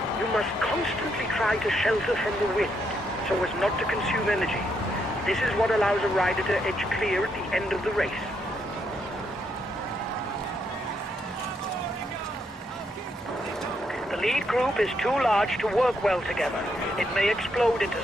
You must constantly try to shelter from the wind so as not to consume energy. This is what allows a rider to edge clear at the end of the race. The lead group is too large to work well together. It may explode into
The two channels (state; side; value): normal; both; correlation 0.77